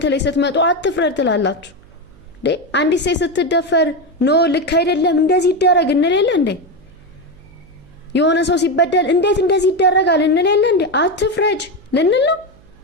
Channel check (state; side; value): noise; right; hum, 27 dB below the sound